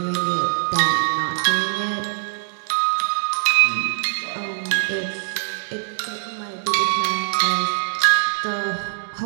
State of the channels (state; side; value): silent; left; digital silence